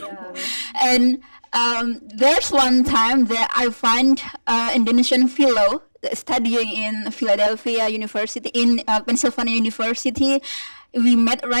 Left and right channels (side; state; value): both; inverted; correlation -1.00